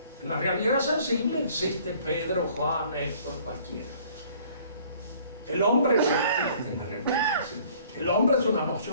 En la realidad sensible existe Pedro, Juan, Héctor, cualquiera. El hombre no existe en la realidad sensible. El hombre es una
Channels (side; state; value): both; inverted; correlation -0.56